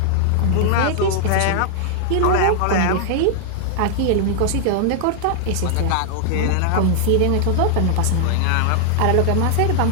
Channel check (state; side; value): different; both; correlation 0.00